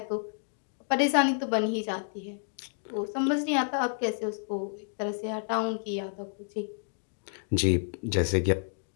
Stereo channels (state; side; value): silent; right; digital silence